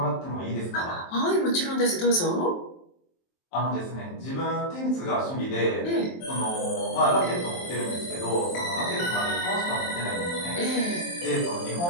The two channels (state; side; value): late; right; 23 ms